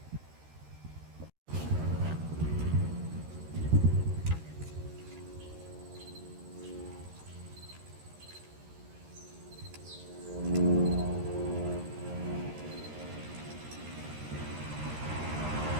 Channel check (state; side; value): late; left; 13 ms